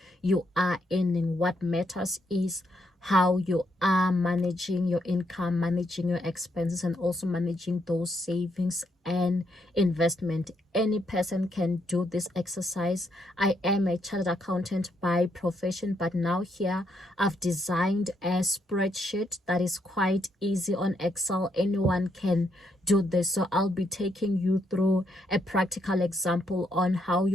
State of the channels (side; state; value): both; normal; correlation 0.76